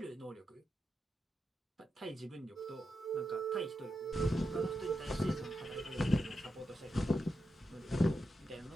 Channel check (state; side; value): normal; both; correlation 0.87